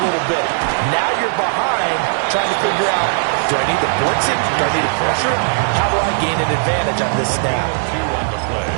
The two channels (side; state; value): left; silent; 68 dB below the other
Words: little bit. Now you're behind trying to figure out, do I need to blitz it? Do I need to pressure it? How do I gain an advantage on this snap? 2 on the play.